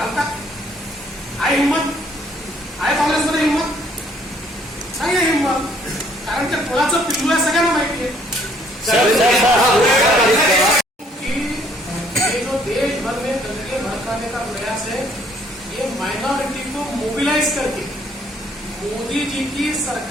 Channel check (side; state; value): both; normal; correlation 0.63